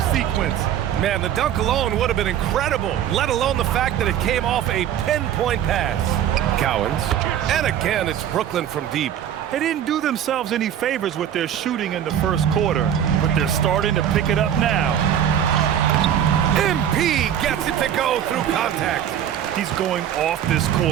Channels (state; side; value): quieter; left; 10.1 dB